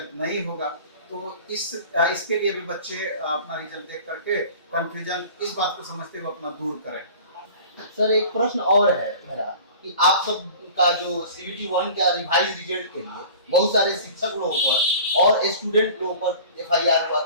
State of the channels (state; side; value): inverted; both; correlation -0.42